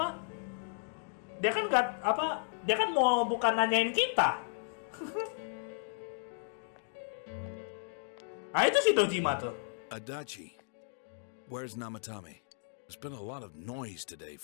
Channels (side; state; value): right; silent; digital silence